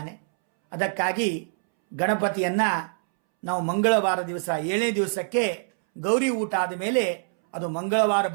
ಅದಕ್ಕಾಗಿ ಗಣಪತಿಯನ್ನು ನಾವು ಮಂಗಳವಾರ ದಿವಸ 7ನೇ ದಿವಸಕ್ಕೆ ಗೌರಿ ಊಟ ಆದ ಮೇಲೆ ಅದು ಮಂಗಳವಾರ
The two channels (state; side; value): silent; left; 62 dB below the other